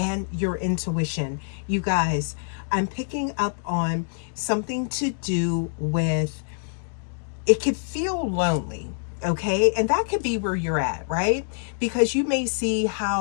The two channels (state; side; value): silent; right; digital silence